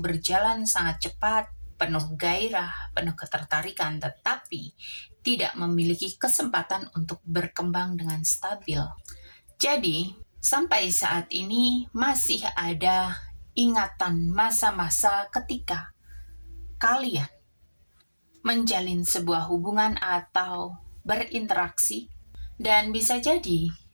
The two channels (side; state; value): both; inverted; correlation -1.00